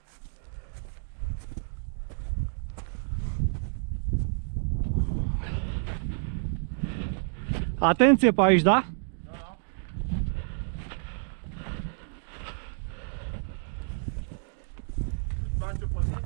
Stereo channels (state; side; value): silent; left; digital silence